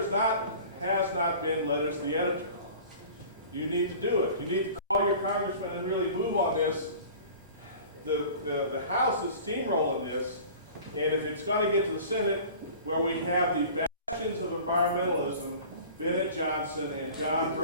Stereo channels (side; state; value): both; inverted; correlation -0.43